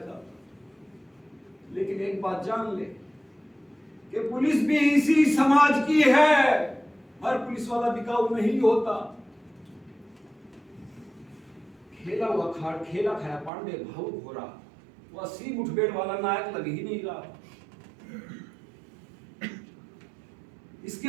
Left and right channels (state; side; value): drops out; left; at 13.5 s